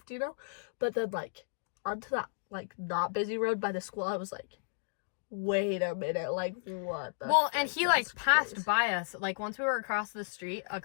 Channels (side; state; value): right; silent; digital silence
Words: you know. But then like onto that like not busy road by the school, I was like, wait a minute, like what? Well, and he like passed by us. Like once we were across the street,